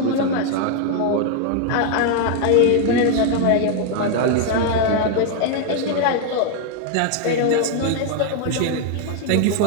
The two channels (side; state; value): both; different; correlation 0.00